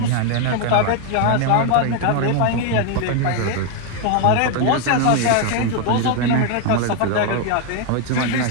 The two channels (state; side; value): different; both; correlation 0.01